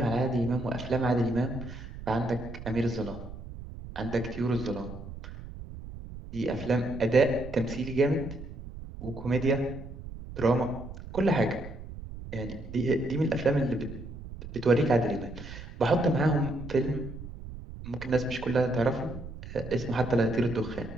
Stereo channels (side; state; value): right; noise; rumble, 12 dB below the sound